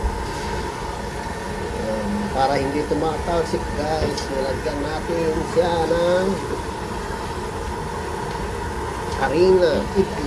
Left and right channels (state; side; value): identical; both; correlation 1.00